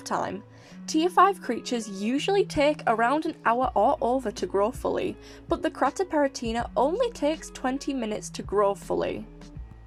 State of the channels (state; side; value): identical; both; correlation 1.00